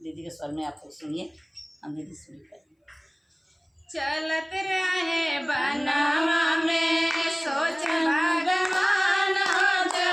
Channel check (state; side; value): identical; both; correlation 1.00